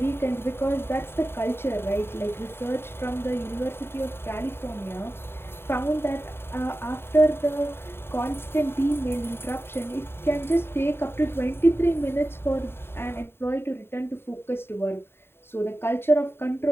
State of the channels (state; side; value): late; right; 0.11 ms